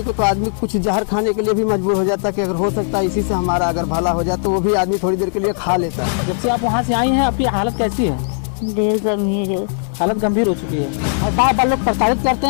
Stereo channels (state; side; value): silent; right; digital silence